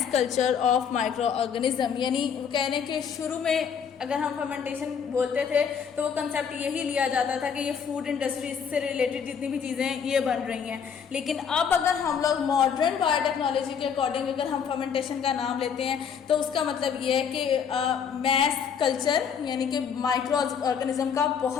culture of microorganism. यानी वो कह रहे हैं कि शुरू में अगर हम फर्मेंटेशन बोलते थे तो वो कंसेप्ट यही लिया जाता था कि ये फूड इंडस्ट्री से रिलेटेड जितनी भी चीज़ें ये बन रही हैं, लेकिन अब अगर हम लोग मॉडर्न बायोटेक्नोलॉजी के अकॉर्डिंग अगर हम फर्मेंटेशन का नाम लेते हैं तो उसका मतलब ये है कि मैस कल्चर यानी कि माइक्रो ऑर्गेनिज्म का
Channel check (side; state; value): right; quieter; 7.1 dB